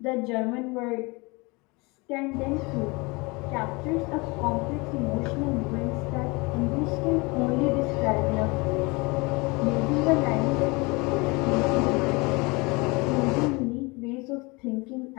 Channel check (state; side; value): quieter; right; 26.4 dB